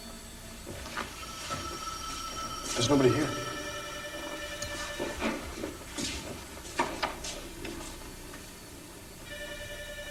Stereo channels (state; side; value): identical; both; correlation 1.00